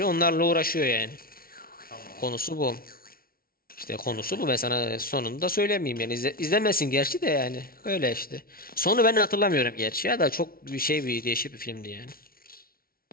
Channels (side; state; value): right; late; 0.43 ms